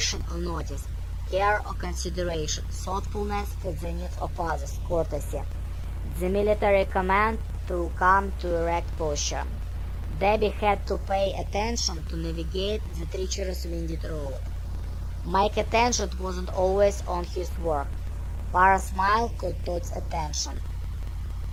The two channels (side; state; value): both; identical; correlation 1.00